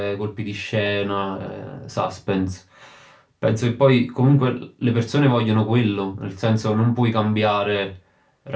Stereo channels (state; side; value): identical; both; correlation 1.00